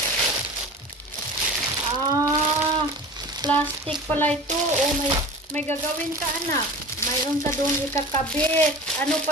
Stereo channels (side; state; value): both; normal; correlation 0.36